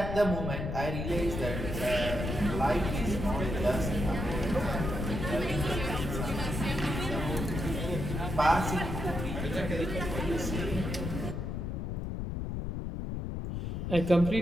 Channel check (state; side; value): noise; left; rumble, 3 dB below the sound